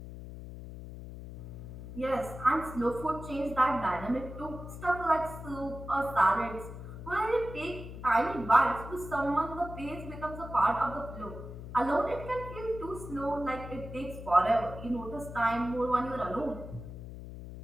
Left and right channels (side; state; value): left; noise; hum, 11 dB below the sound